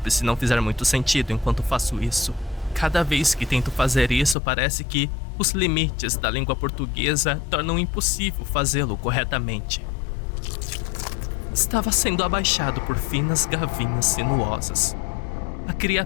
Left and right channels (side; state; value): right; drops out; at 4.4 s